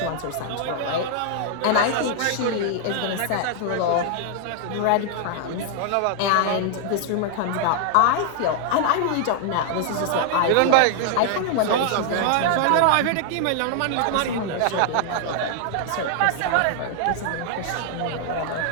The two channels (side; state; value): both; different; correlation 0.00